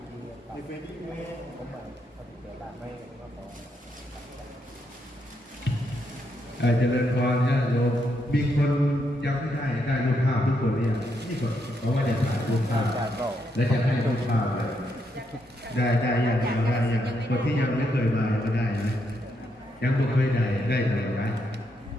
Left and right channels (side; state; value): both; normal; correlation 0.78